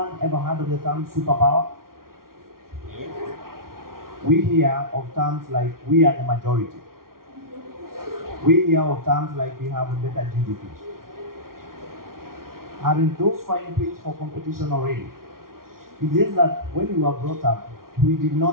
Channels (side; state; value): left; late; 0.92 ms